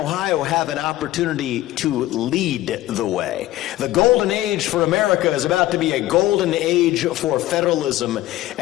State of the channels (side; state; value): right; quieter; 15.6 dB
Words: have an opportunity to lead the way. The golden age for America is about to be a golden age for federalism,